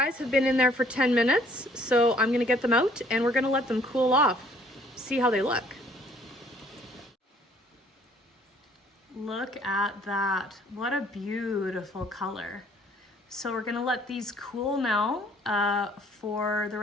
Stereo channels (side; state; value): both; normal; correlation 0.60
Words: have been in there for 10 minutes, so I'm gonna get them out and we're gonna let them cool off. See how they look. Look at that. What a beautiful color. So we're gonna let these cool now for the